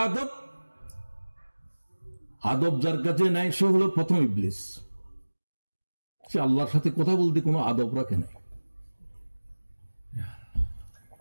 আদব যার কাছে নাই সে হলো প্রথম ইবলিস। সে আল্লাহর সাথে কথা বলতে কোনো আদব রাখে নাই।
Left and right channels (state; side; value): inverted; both; correlation -1.00